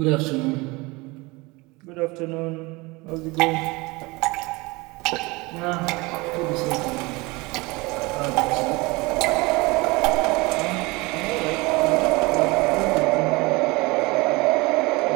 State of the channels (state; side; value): quieter; left; 24.1 dB